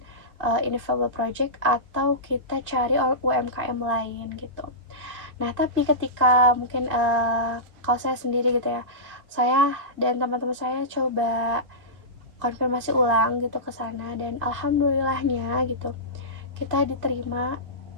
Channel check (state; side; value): late; left; 2.3 ms